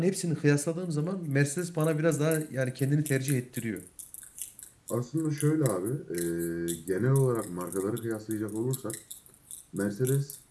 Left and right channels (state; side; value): identical; both; correlation 1.00